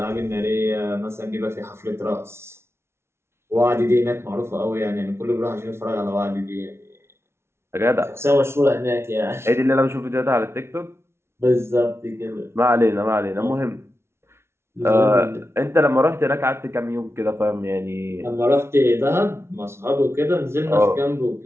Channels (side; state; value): left; late; 0.12 ms